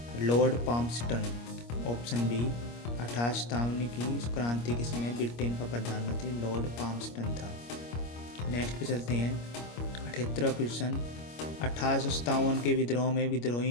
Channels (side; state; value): right; late; 25 ms